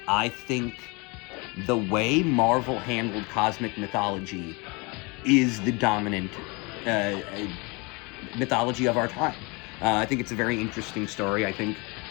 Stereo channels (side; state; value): right; quieter; 28.4 dB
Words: I think the way Marvel handled cosmic mythology is the dominant mythology of our time. I think it's a very interesting story. I think